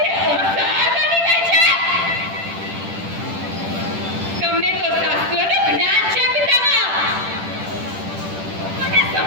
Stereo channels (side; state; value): left; late; 10 ms